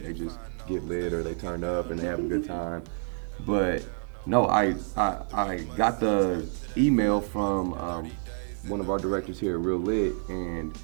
they just get lit or they turn up and they have a good time. But no, I got the email from one of our directors here at REELLIT, and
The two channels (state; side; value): silent; left; 59 dB below the other